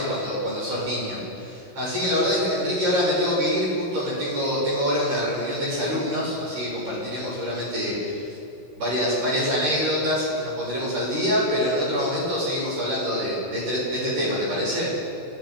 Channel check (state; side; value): late; left; 16 ms